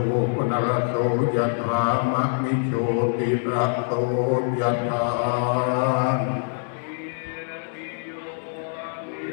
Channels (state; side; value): silent; right; digital silence